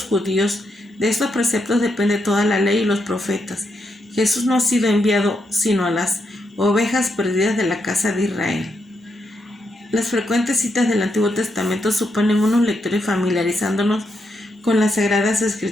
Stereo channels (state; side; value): normal; both; correlation 0.81